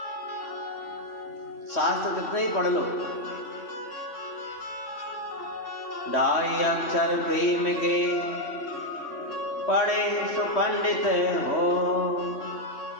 शास्त्र कितने ही पढ़ लो, ढाई अक्षर प्रेम के पढ़े सो पंडित हो।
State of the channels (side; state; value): right; late; 3.1 ms